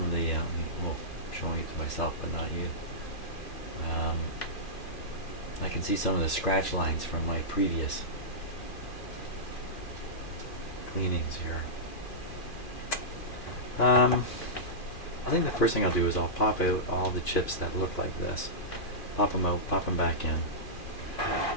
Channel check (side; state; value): right; late; 2.4 ms